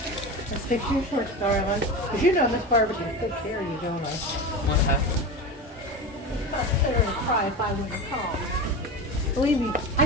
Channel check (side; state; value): both; normal; correlation 0.25